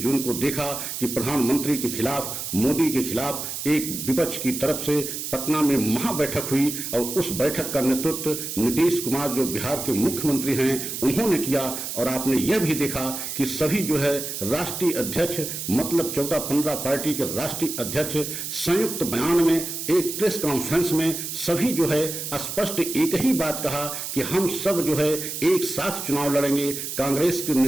को देखा कि प्रधानमंत्री के खिलाफ, मोदी के खिलाफ एक विपक्ष की तरफ से पटना में महाबैठक हुई और उस बैठक का नेतृत्व नीतीश कुमार जो बिहार के मुख्यमंत्री हैं उन्होंने किया। और आपने यह भी देखा कि सभी जो है राष्ट्रीय अध्यक्ष मतलब 14-15 पार्टी के राष्ट्रीय अध्यक्ष संयुक्त बयान में एक प्रेस कॉन्फ्रेंस में सभी जो है स्पष्ट एक ही बात कहा कि हम सब जो है एक साथ चुनाव लड़ेंगे, कांग्रेस के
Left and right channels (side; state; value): right; noise; hiss, 6 dB below the sound